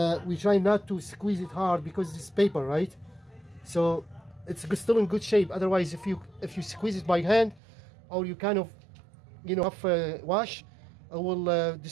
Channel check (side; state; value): left; drops out; at 7.6 s